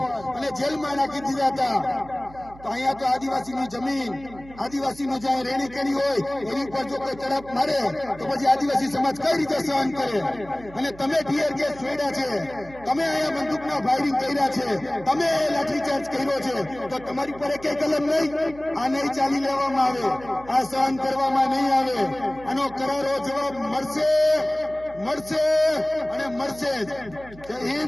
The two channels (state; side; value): noise; right; hum, 20 dB below the sound